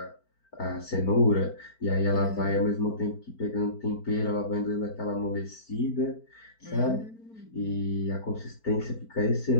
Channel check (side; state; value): right; late; 4.5 ms